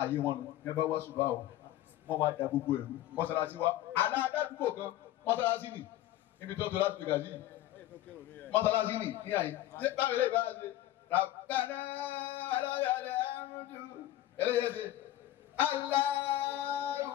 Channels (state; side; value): quieter; right; 14.1 dB